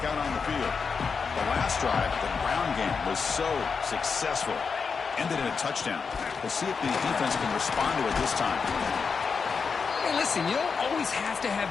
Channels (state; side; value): quieter; right; 5.4 dB